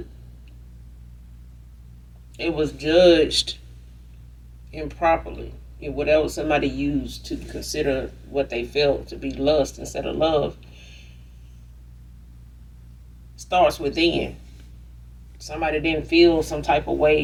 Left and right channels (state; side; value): identical; both; correlation 1.00